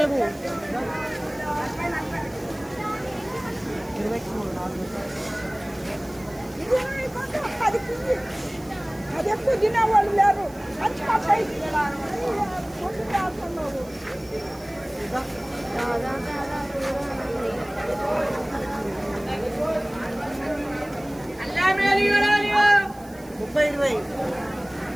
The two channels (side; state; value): right; noise; hiss, 24 dB below the sound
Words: అది ఎక్కువ తినేవాళ్ళు లేరు.